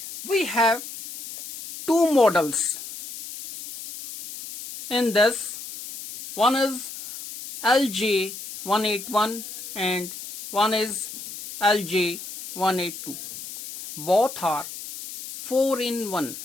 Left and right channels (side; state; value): left; noise; hiss, 11 dB below the sound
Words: We have two models in this. One is LJ-181 and one is LJ-182. Both are 4-in-1.